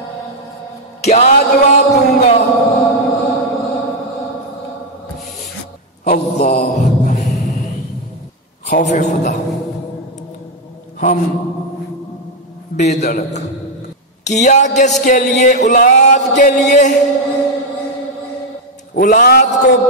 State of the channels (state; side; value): normal; both; correlation 0.02